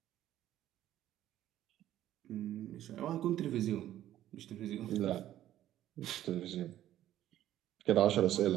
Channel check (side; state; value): left; quieter; 12.8 dB